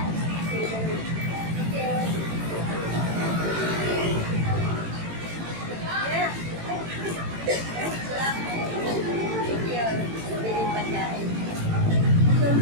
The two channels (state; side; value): late; left; 18 ms